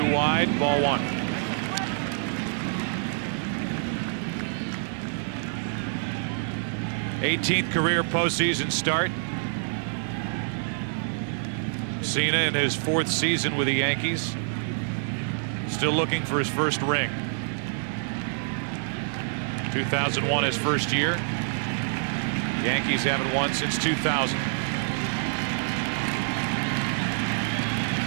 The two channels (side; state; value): left; silent; digital silence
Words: inside, ball 1. '18th career postseason start. Cena in his 4th season with the Yankees. Still looking for his first ring. 2001 his first year. Yankees haven't won since 2000.